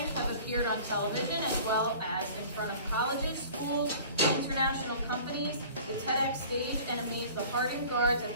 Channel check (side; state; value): both; inverted; correlation -0.45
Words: have appeared on television as well as in front of colleges, schools, international companies, the TEDx stage, and amazed the hardened guards at